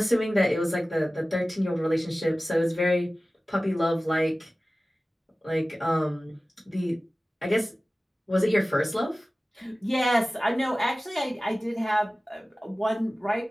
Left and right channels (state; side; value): normal; both; correlation 0.97